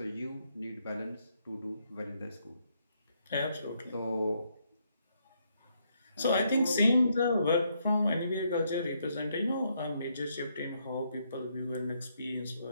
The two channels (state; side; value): inverted; both; correlation -0.75